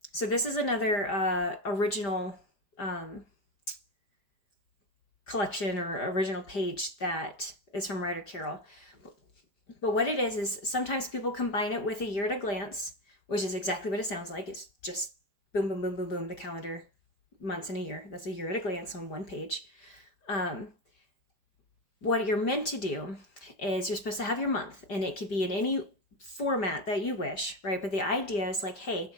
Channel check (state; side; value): late; right; 5.0 ms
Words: So this is another original collection or original page that is from Ryder Carroll. But what it is sometimes people combine it with a year at a glance, which is exactly what it sounds like. It's just boom, boom, boom, boom, boom, the calendar, months in a year. That's a year at a glance on one page. What you're meant to do is you're supposed to have your month, and it could be in any format that you wish, right? But the idea is like, hey,